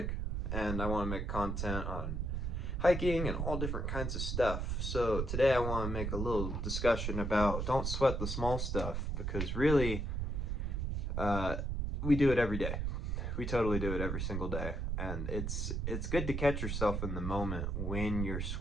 and I want to make content on hiking and all different kinds of stuff. So today I want to make a little discussion about don't sweat the small stuff, because really uh, we do it every day. We totally do it every single day, and it's good to catch yourself in the moment when you're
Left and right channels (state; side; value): noise; right; rumble, 1 dB below the sound